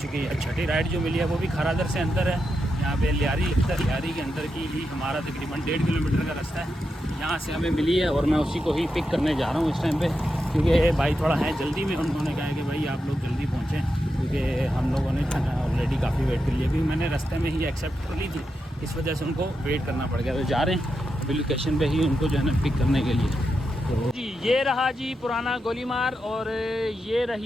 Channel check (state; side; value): normal; both; correlation 0.87